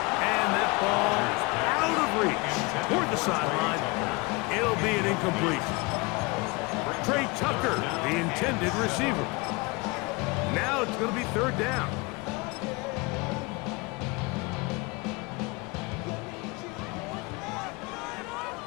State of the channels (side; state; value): right; quieter; 26.2 dB